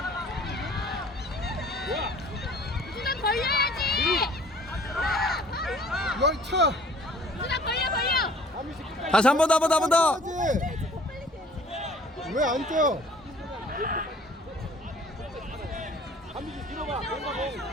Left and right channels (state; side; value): normal; both; correlation 0.52